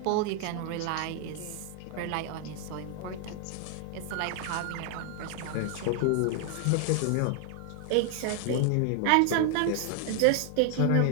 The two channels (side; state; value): both; different; correlation 0.00